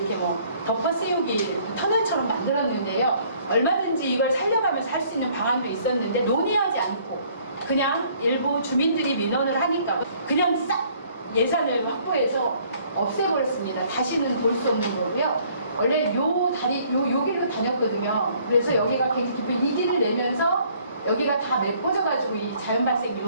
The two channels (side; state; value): both; inverted; correlation -0.61